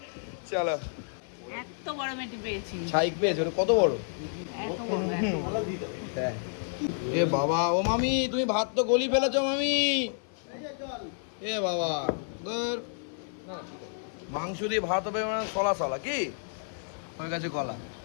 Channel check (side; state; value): right; silent; 56 dB below the other